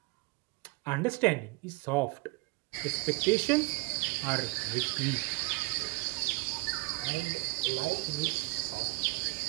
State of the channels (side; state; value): left; quieter; 27.4 dB